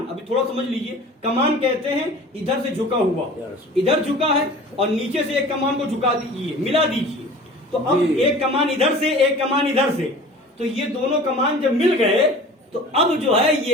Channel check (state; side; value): normal; both; correlation 0.42